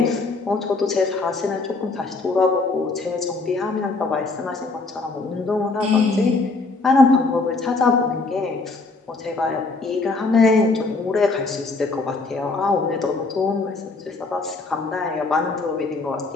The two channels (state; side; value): quieter; right; 3.7 dB